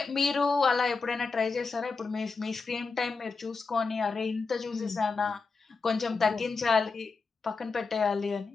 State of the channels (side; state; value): right; quieter; 4.4 dB